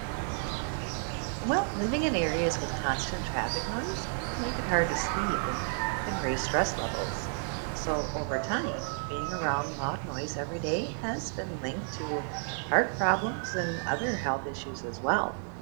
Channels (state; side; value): silent; left; 57 dB below the other